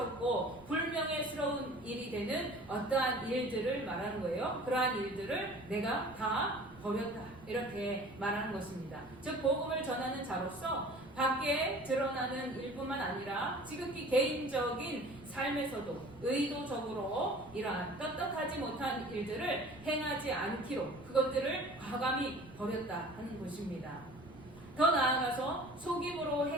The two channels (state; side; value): noise; right; rumble, 22 dB below the sound